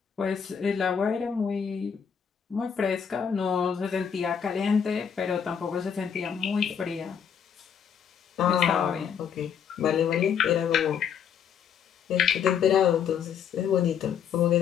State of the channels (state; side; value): quieter; right; 7.7 dB